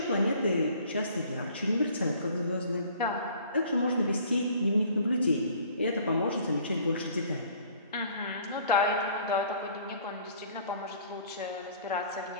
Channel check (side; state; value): both; inverted; correlation -0.54